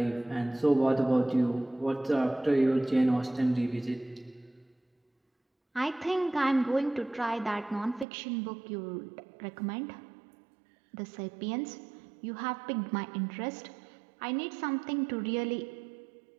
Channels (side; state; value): left; drops out; at 8.1 s